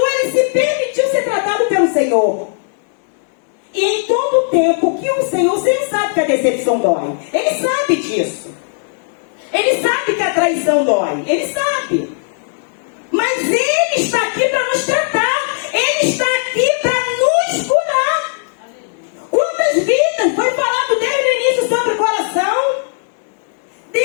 ele se permitiu ser tratado pelo Senhor. E em todo tempo que o Senhor sabe que a decepção dói. Ele sabe disso. Ele sabe que a traição dói. Ele sabe. Mas Ele está aqui para nos tratar. Ele está aqui para nos curar. Quantas vidas foi falado desde o início sobre o coração?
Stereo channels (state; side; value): silent; right; 66 dB below the other